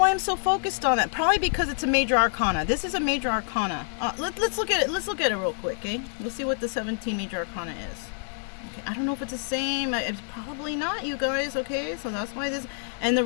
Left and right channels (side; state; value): right; silent; 60 dB below the other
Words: I'm so focused on that. Probably because it's a major arcana. This is a major arcana. Let's look at it. Let's look at it real quick, okay? We'll see what the 17 major arcana is. Okay, I don't know if it's the same. It's probably not, you guys, okay? So that's why this... And the